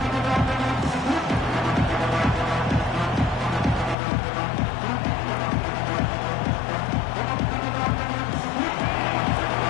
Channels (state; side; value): drops out; right; at 4.0 s